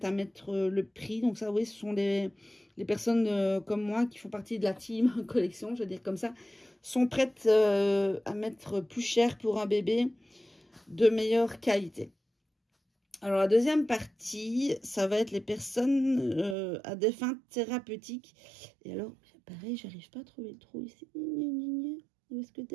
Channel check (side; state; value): left; drops out; at 16.6 s